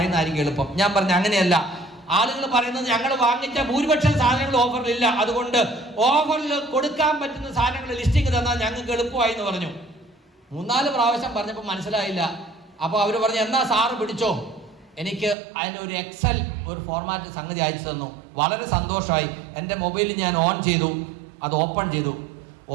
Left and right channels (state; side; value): drops out; left; at 15.4 s